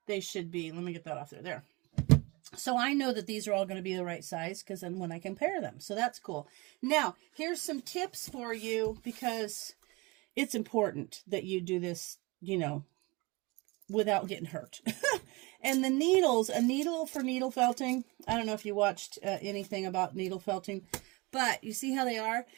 they should be. Let me get that off there. There. So I know that these are all going to be the right size because then when I compare them. So that's cool. Now, here's some tips for you because it's important that you do this, without getting hurt. And the needles, a needle for needle felting. I don't know if you watched anything about needle felting, but you see how they are?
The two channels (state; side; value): quieter; left; 25.5 dB